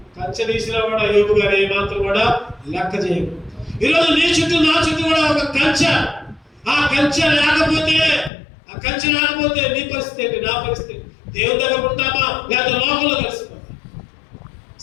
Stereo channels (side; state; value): right; drops out; at 8.3 s